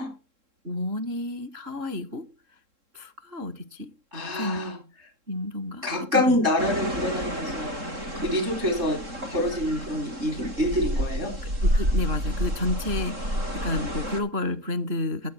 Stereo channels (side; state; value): left; late; 3.7 ms